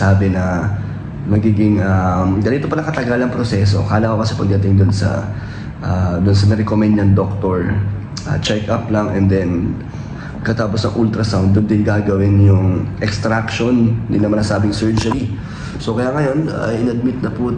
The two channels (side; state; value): both; identical; correlation 1.00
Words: na magiging ganito pala katagal ang proseso. Akala ko kasi pagdating dun sa na-recommend niyang doktor, check up lang and then katapos ng ultrasound, doon din gagawin yung extraction, hindi naman nasabing surgery. So kaya ngayon, in-admit na po